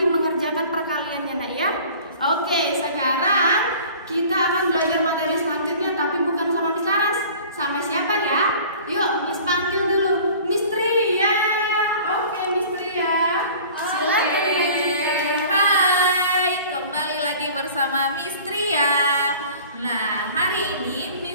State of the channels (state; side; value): inverted; both; correlation -0.45